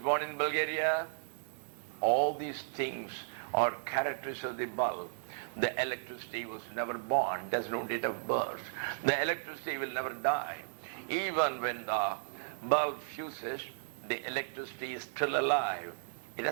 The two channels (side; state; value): left; silent; digital silence